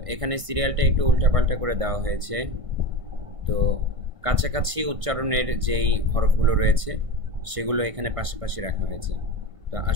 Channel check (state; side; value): late; left; 1.5 ms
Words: এখানে সিরিয়ালটা একটু উল্টাপাল্টা করে দেওয়া হয়েছে। তো কাছাকাছি উচ্চারণের যেই হরফগুলো রয়েছে সেগুলো এখানে পাশাপাশি রাখা হয়েছে। তো